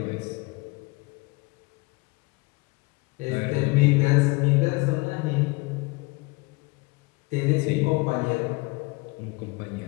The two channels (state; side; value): quieter; right; 25.6 dB